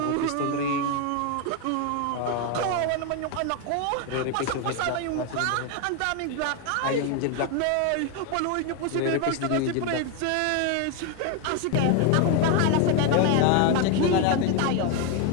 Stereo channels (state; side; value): different; both; correlation 0.01